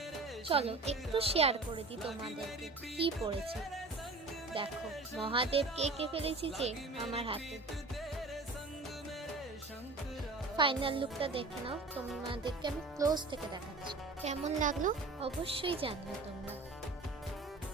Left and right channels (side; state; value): left; quieter; 3.3 dB